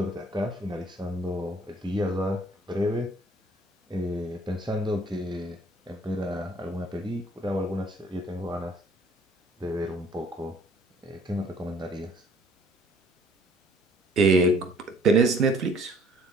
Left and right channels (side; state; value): both; normal; correlation 0.58